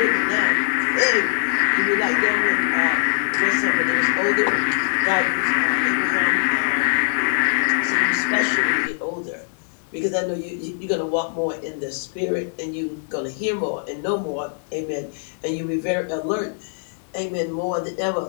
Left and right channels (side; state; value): right; silent; digital silence